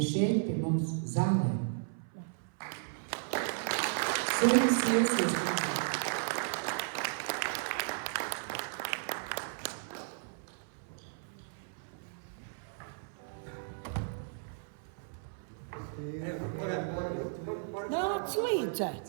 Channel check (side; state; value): left; silent; 55 dB below the other